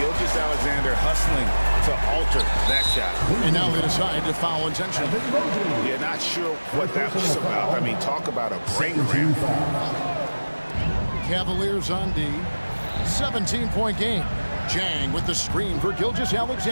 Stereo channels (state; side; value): inverted; both; correlation -1.00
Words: hustling to alter that shot. And now they decide to foul intentionally. Yeah, not sure what that was about. I mean, talk about a brain cramp. Cavaliers on D. 17-point game. Jang with the screen for